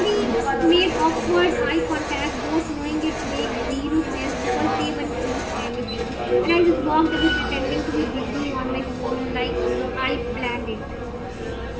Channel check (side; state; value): both; identical; correlation 1.00